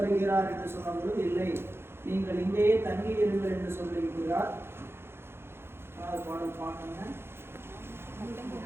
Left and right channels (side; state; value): left; late; 0.11 ms